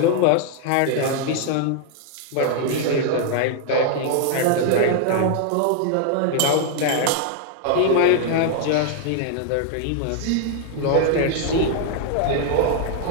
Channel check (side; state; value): both; different; correlation 0.00